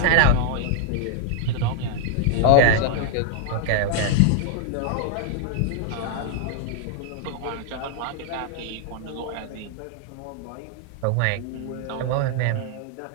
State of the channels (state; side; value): different; both; correlation 0.00